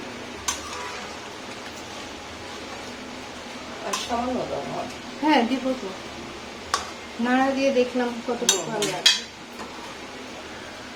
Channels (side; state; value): both; identical; correlation 1.00